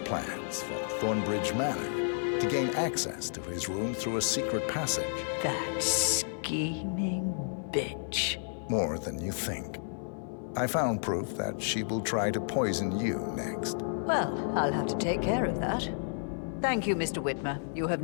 from Thornbridge Manor to gain access to his room through a secret passage. That scheming bitch. More than you think. I found proof that she will try to poison you next. Well, I'll have to take care of that. Thank you, Mr. Whitmer. You have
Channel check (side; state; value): right; silent; 57 dB below the other